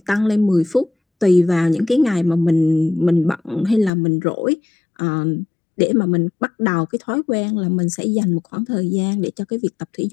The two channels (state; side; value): drops out; right; at 3.9 s